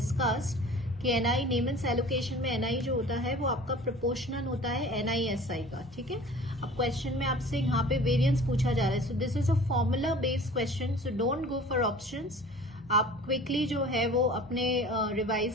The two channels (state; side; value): normal; both; correlation 0.44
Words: कि NI Neyman's allocation में NI जो होता है वो आपका proportional होता है NISI का. ठीक है, अब क्वेश्चन में आपसे यहाँ पे वेरियंस पूछा जा रहा है. सो this is a formula based question, so don't go for options. आप क्विकली जो है वो अपने